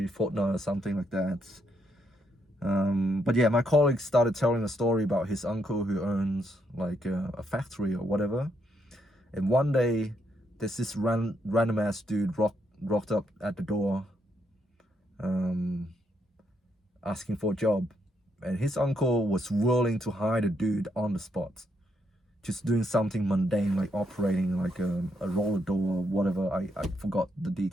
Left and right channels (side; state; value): both; normal; correlation 0.77